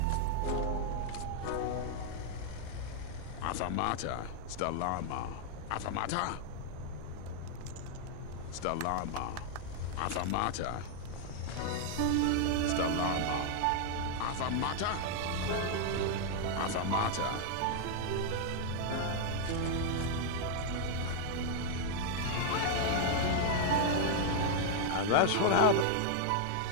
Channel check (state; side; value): different; both; correlation 0.00